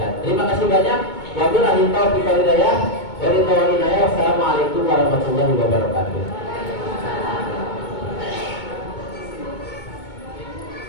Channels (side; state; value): right; late; 2.2 ms